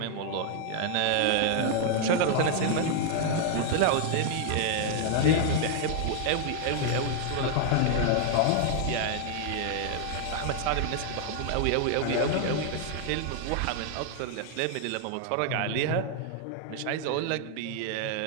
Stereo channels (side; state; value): both; different; correlation 0.00